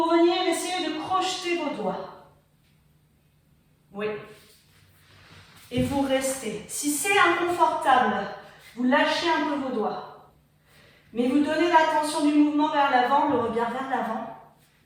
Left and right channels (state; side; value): identical; both; correlation 1.00